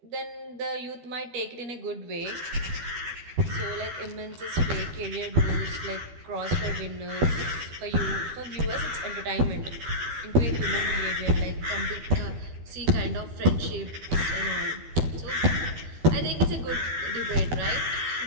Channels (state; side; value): late; left; 12 ms